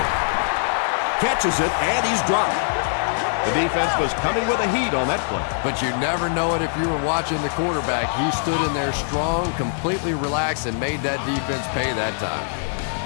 Catches it, and he's dropped. The defense was coming with a heat on that play. But you never know it if you were watching the quarterback. He stood in there strong, completely relaxed, and made that defense pay that time.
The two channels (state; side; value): silent; right; 64 dB below the other